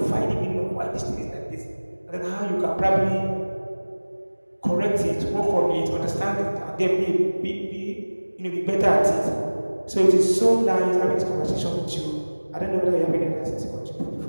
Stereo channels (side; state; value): both; inverted; correlation -1.00